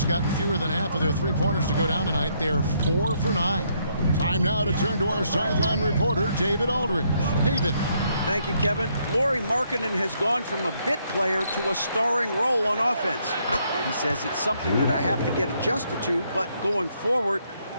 gotten fewer than half of their three-pointers to go down tonight. They're 4 for 9. Time now to turn to our sideline reporter, David Aldridge. David. Thank you, Kevin. Lauri Markkanen has gone from a bit player to a starring role on offense. He says it's something that I have to get adjusted to, but going forward,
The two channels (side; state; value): both; inverted; correlation -0.72